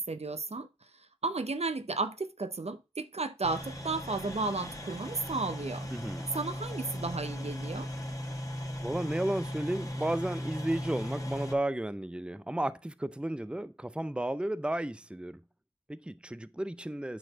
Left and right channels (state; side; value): normal; both; correlation 0.67